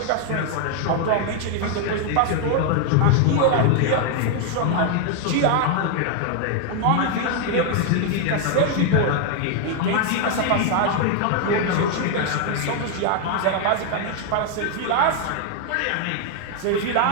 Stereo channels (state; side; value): different; both; correlation 0.00